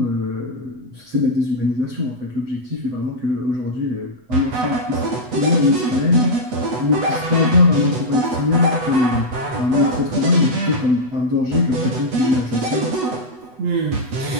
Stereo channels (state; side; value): late; left; 8.1 ms